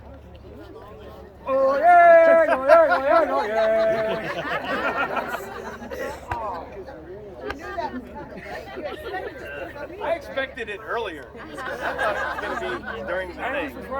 Oh yeah, oh yeah, oh yeah, I expected it earlier. I thought it was going to be during the thing.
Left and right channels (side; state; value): both; identical; correlation 1.00